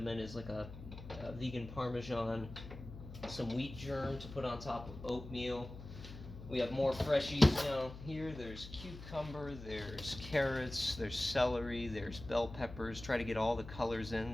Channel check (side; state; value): left; noise; hum, 13 dB below the sound